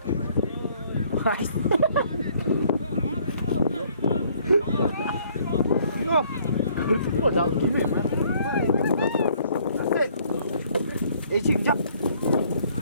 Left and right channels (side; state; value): both; inverted; correlation -0.62